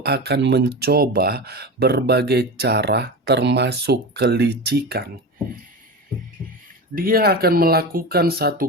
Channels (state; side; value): normal; both; correlation 0.25